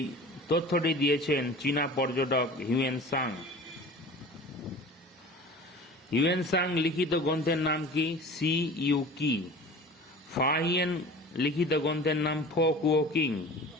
তথ্যটি দিয়েছেন চীনা পর্যটক হিউয়েন সাং। হিউয়েন সাং লিখিত গ্রন্থের নাম কি? সি ইউ কি। ফাহিয়েন লিখিত গ্রন্থের নাম ফো কুও কিং।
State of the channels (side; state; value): both; normal; correlation 0.40